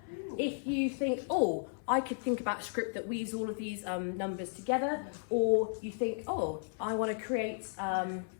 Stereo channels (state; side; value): silent; right; 55 dB below the other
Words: if you think, oh, I could think about a script that weaves all of these numbers together, or you think, oh, I want to create